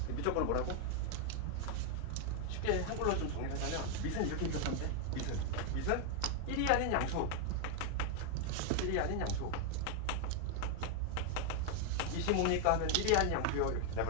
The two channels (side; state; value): both; different; correlation 0.00